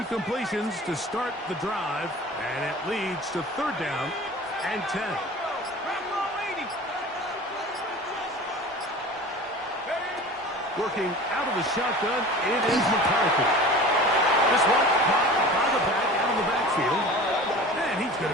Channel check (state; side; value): normal; both; correlation 0.39